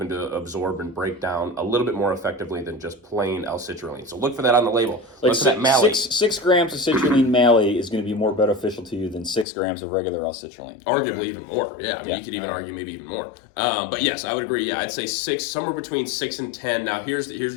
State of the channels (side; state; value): right; drops out; at 9.5 s